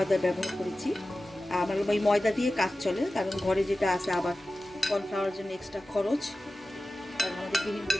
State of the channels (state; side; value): normal; both; correlation 0.95